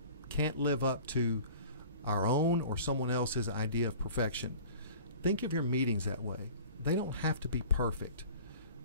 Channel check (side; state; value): both; inverted; correlation -0.44